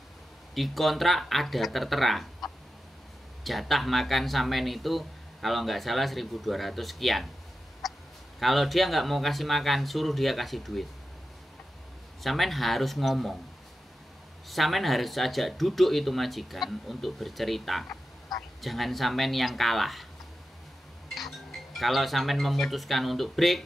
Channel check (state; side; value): normal; both; correlation 0.91